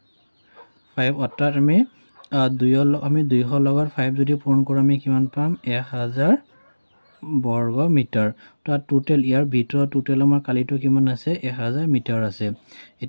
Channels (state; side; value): inverted; both; correlation -1.00